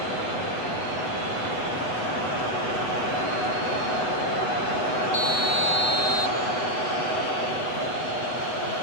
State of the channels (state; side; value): late; right; 8.1 ms